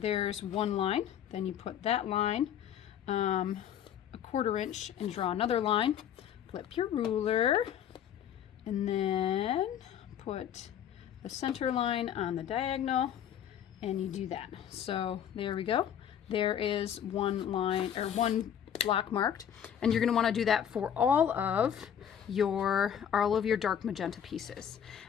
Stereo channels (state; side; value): quieter; right; 9.3 dB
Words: 1 line, then you put that line a 1/4 inch and draw another line, flip your ruler, and then put the center line on the diagonal, and you do that. So there we go. There is 1 line, or 1 block marked, and you're going to want to do that for all of your dark magenta pieces.